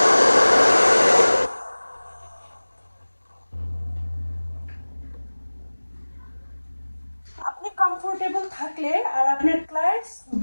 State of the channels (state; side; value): inverted; both; correlation -1.00